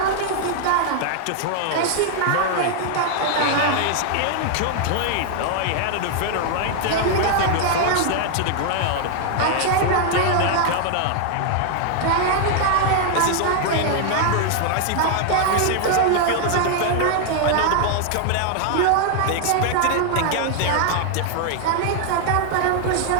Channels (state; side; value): different; both; correlation 0.00